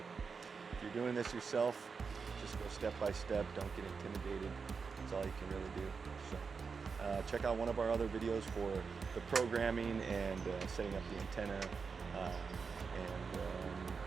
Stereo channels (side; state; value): left; quieter; 5.3 dB